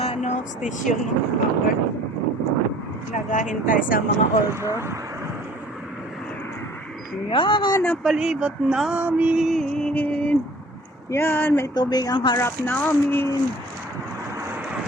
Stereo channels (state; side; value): normal; both; correlation 0.51